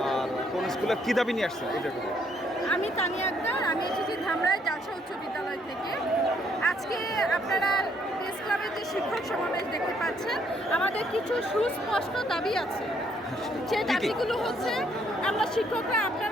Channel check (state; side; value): normal; both; correlation 0.69